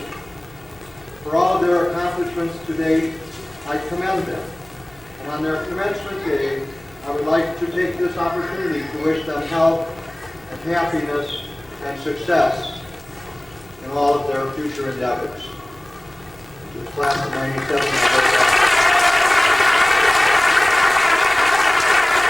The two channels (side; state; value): left; noise; hum, 27 dB below the sound